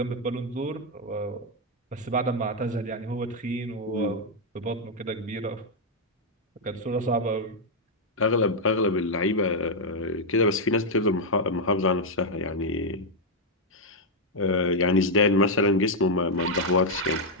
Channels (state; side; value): normal; both; correlation -0.02